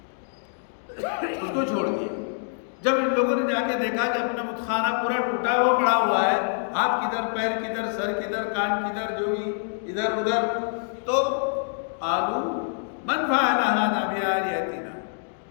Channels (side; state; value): right; silent; digital silence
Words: اس کو چھوڑ دیا۔ جب ان لوگوں نے جا کے دیکھا کہ اپنا بت خانہ پورا ٹوٹا ہوا پڑا ہوا ہے، ہاتھ کدھر، پیر کدھر، سر کدھر، کان کدھر، جو بھی ادھر ادھر، تو قالوا من فعل هذا بآلهتنا،